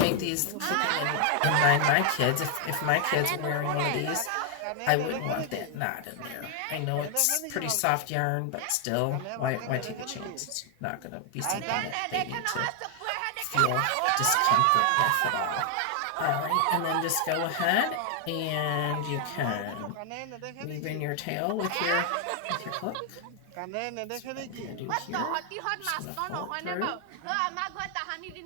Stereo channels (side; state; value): both; different; correlation 0.00